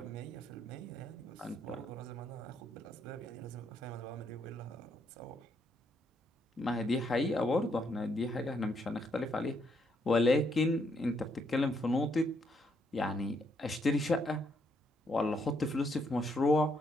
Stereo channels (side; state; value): both; normal; correlation 0.75